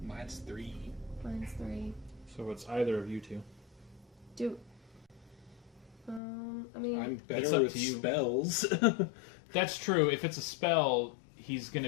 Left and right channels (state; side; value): drops out; right; at 6.2 s